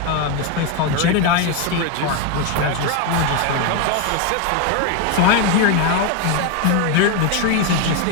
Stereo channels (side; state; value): both; different; correlation 0.02